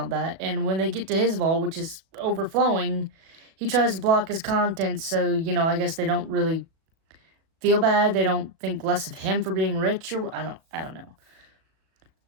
that. And when they get to his vault, which is overflowing, he tries to block his contents, so, I guess they don't really feel bad. They don't think less of him for being rich, or I don't know.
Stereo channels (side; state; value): left; late; 36 ms